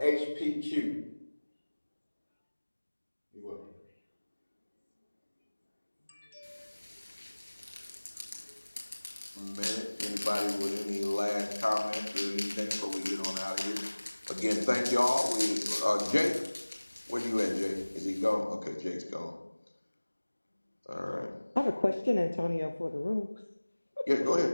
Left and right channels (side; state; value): both; inverted; correlation -1.00